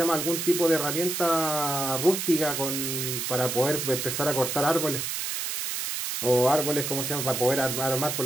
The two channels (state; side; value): noise; right; hiss, 2 dB below the sound